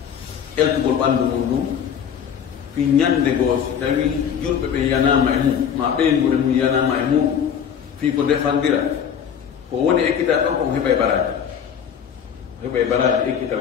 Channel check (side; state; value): right; quieter; 8.1 dB